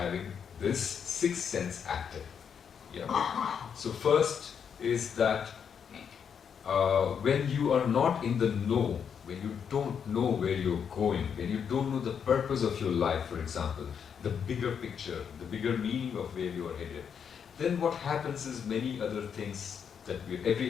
this sixth sense active. Yeah. So first is that when you are not in the know, when you don't know where you're going, when you don't know the purpose of your life, for example, the bigger picture, the bigger meaning of where you are headed, then what happens is many other things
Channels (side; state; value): right; quieter; 7.3 dB